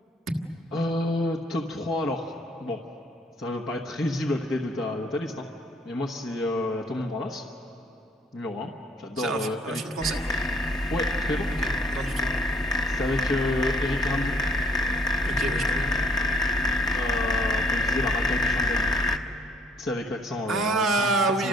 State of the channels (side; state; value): both; normal; correlation 0.62